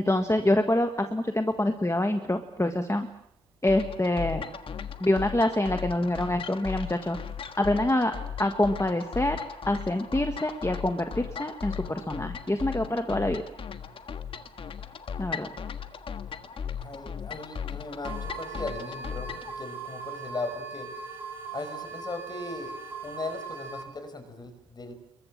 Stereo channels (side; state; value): both; normal; correlation 0.83